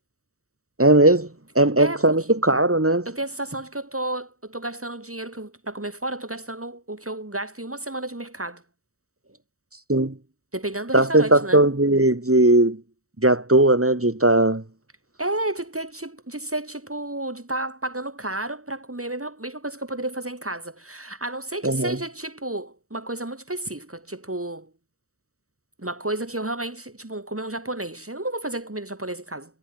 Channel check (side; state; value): left; late; 0.65 ms